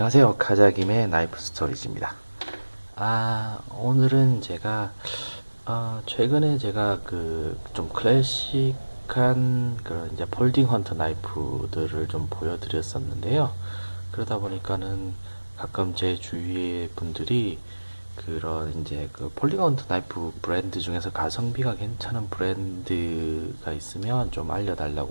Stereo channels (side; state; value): both; inverted; correlation -1.00